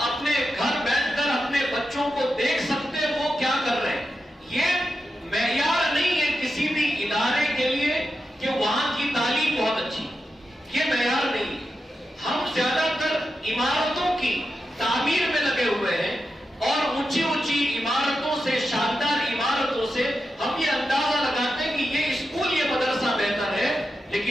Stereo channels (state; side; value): normal; both; correlation 0.89